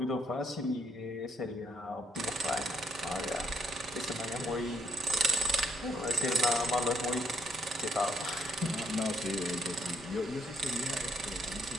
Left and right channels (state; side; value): normal; both; correlation 0.70